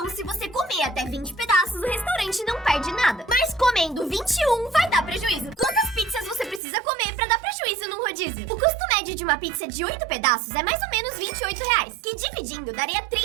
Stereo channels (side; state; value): left; drops out; at 6.6 s